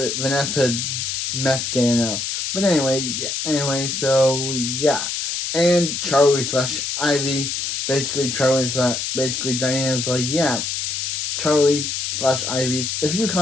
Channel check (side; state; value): left; noise; hiss, 2 dB below the sound